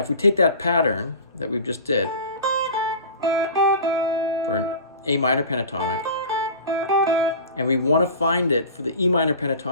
if we take that pattern that we've just did for an A minor pentatonic, and we want to find it for the E minor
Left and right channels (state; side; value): inverted; both; correlation -0.36